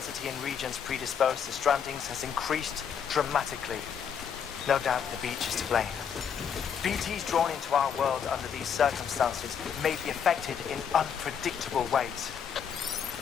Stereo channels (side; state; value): right; quieter; 7.6 dB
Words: in regions predisposed to strandings has increased dramatically. No doubt the beach is to blame. BTs drawn into our world under these circumstances may be affected in unpredictable ways.